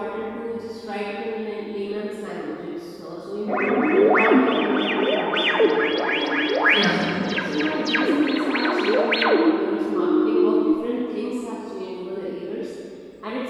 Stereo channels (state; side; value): identical; both; correlation 1.00